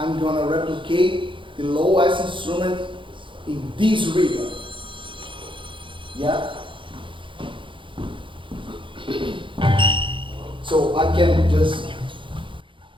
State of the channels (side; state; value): left; late; 0.24 ms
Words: gonna replicate the lowest instrument in this rhythm. Yeah. So I can just